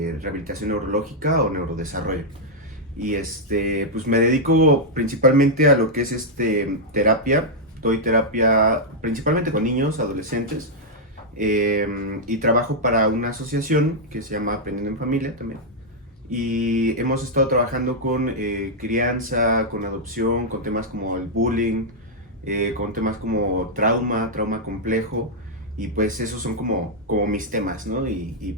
rehabilitación neurológica o neurodesarrollo. Y pues me dedico principalmente a lo que es terapia. Doy terapia principalmente con niños, adolescentes, y trabajo para una asociación que se llama Aprendiendo en Familia también. Y hemos estado trabajando con crianza, con adopción, con temas como el bullying, con temas como trauma complejo, y pues esos son como mis temas, ¿no?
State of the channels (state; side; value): normal; both; correlation -0.05